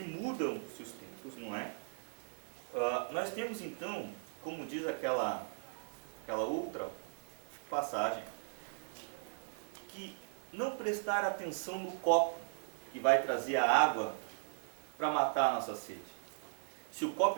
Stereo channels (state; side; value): silent; left; 52 dB below the other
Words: mudam-se os tempos, não é? Nós temos então, como diz aquela outra passagem, que não prestar atenção no copo que vai trazer a água para matar a nossa sede. Se o